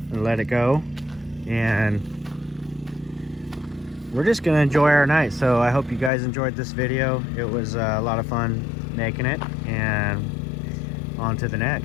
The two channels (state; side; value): drops out; right; at 6.1 s